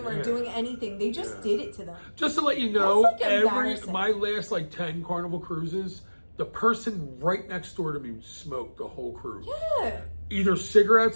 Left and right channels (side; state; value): both; inverted; correlation -1.00